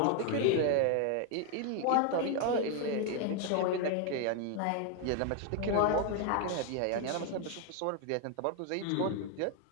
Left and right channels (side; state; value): both; different; correlation 0.01